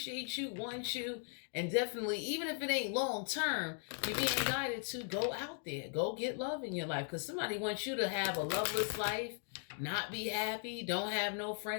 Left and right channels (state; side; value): silent; right; 52 dB below the other